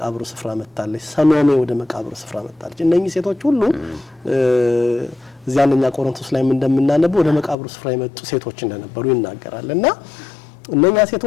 ስፍራ መጣለች። ሰሎሜ ወደ መቃብሩ ስፍራ መጣለች። እነኚህ ሴቶች ሁሉ እዚያ አንደኛ ቆሮንቶስ ላይ እንደምናነበው ወደ መቃብሩ ስፍራ የመጡ ሴቶች እንደነበሩ ይናገራልና እነኛ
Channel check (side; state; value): right; drops out; at 7.6 s